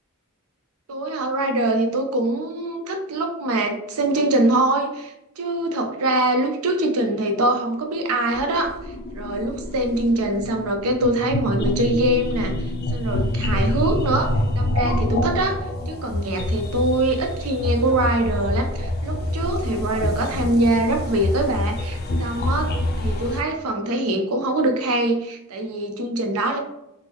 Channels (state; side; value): normal; both; correlation 0.28